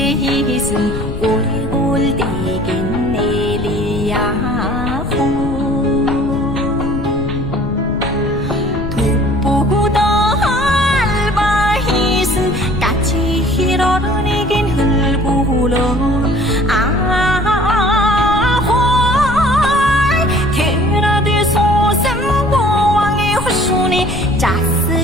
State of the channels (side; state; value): left; noise; rumble, 8 dB below the sound